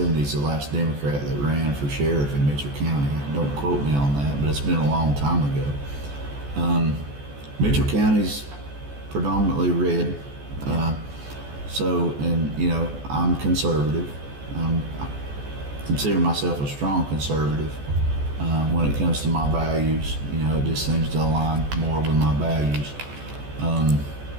the last Democrat that ran for sheriff in Mitchell County. Don't quote me on that, but it's been a long time ago. Mitchell County's predominantly red. I'm conservative. I consider myself a strong conservative when it comes to my values. It just seems to align more with my values.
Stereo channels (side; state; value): left; late; 14 ms